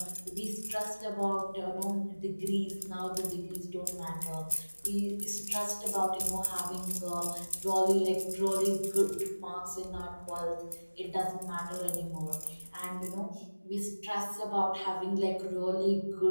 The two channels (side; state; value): both; inverted; correlation -1.00